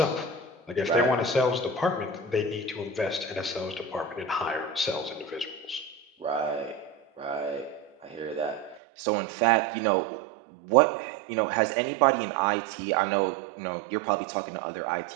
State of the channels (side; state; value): left; drops out; at 8.8 s